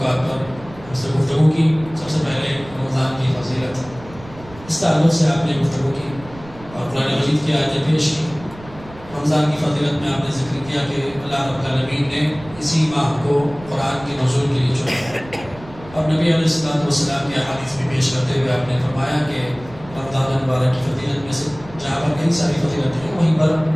پر ہم سے گفتگو کی. سب سے پہلے رمضان کی فضیلت، اس تعلق سے آپ نے گفتگو کی اور قرآن مجید کی آیتیں پیش کی. رمضان کی فضیلت میں آپ نے ذکر کیا کہ اللہ رب العالمین نے اسی ماہ کو قرآن کے نزول کے لیے چنا، اور نبی علیہ السلام کی احادیث بھی پیش کرتے ہوئے آپ نے فرمایا کہ رمضان المبارک کی فضیلت میں سے جہاں پر کئی ساری فضیلت ہیں، وہیں پر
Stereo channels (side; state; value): right; noise; rumble, 18 dB below the sound